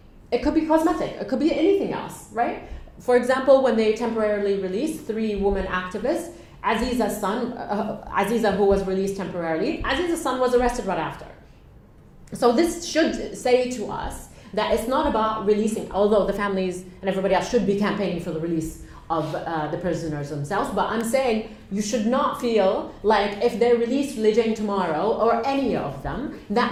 It could be cosmetic. It could be anything else, right? For example, when they temporarily released 3 women activists, Aziza's son, Aziza, who was released temporarily, Aziza's son was arrested right after. So this should say to us that it's not about releasing, although the families and everybody else should be campaigning for the release of the prisoners themselves, but I'm saying you should not feel like if they release Loujain tomorrow, or any of them,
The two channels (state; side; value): identical; both; correlation 1.00